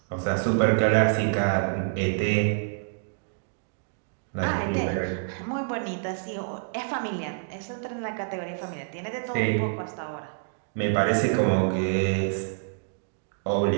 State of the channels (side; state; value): left; silent; digital silence